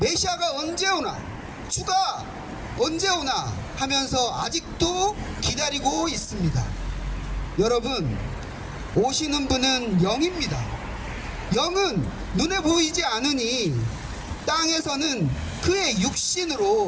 언제 오나, 주가 언제 오나 하면서 아직도 기다리고 있습니다. 여러분, 오시는 분은 영입니다. 영은 눈에 보이지 않으니 땅에서는 그의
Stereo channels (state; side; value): identical; both; correlation 1.00